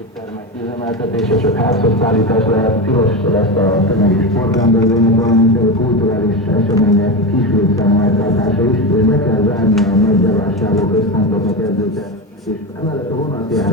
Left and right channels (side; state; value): both; normal; correlation 0.18